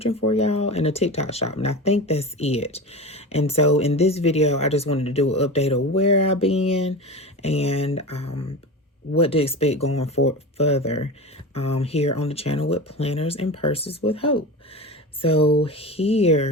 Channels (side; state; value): both; normal; correlation 0.27